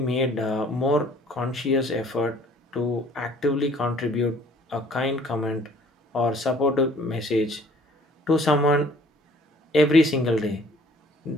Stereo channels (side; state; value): both; normal; correlation 0.56